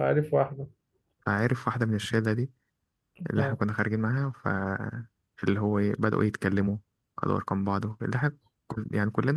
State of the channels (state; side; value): identical; both; correlation 1.00